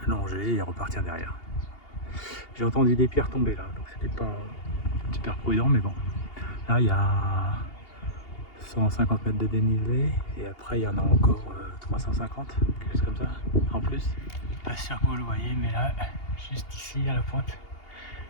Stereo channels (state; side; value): late; right; 2.8 ms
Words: longer et repartir derrière. J'ai entendu des pierres tomber là, donc c'était pas super prudent, mais bon. Là, il y a 150 mètres de dénivelé et après, il y en a encore 350, quelque chose comme ça, en plus. Pas sûr que vous le voyez, mais là, juste ici à la pointe,